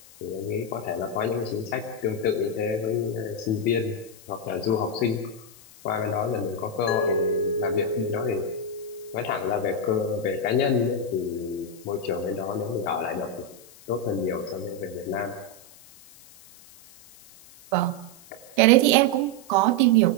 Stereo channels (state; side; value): noise; left; hiss, 22 dB below the sound